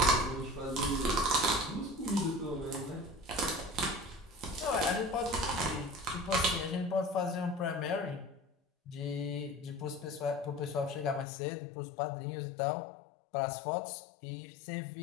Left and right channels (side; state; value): right; drops out; at 11.2 s